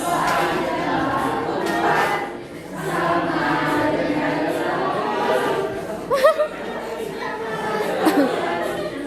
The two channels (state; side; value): identical; both; correlation 1.00